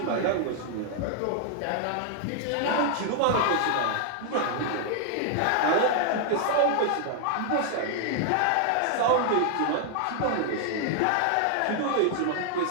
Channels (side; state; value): both; different; correlation 0.00